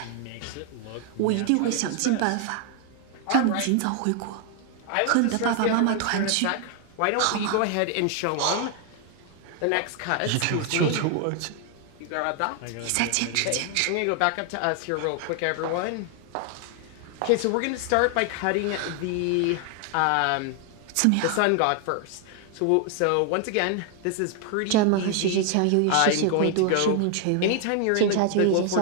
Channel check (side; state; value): both; different; correlation 0.00